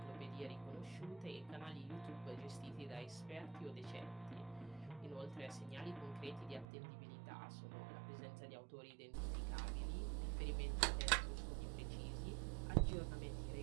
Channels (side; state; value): left; drops out; at 6.7 s